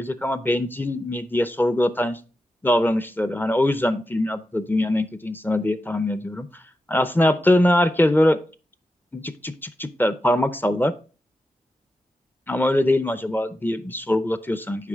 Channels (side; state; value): both; normal; correlation 0.89